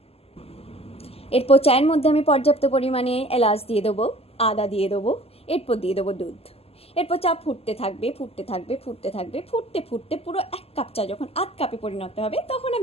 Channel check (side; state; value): right; late; 0.29 ms